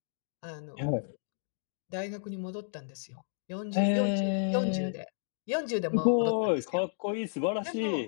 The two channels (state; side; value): silent; right; digital silence